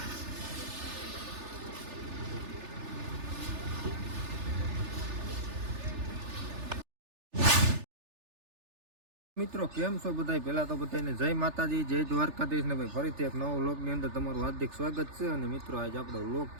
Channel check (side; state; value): left; late; 3.4 ms